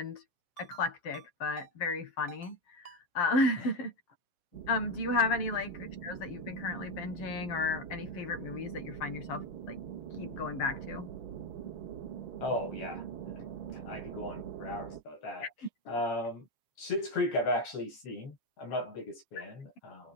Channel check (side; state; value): right; late; 7.4 ms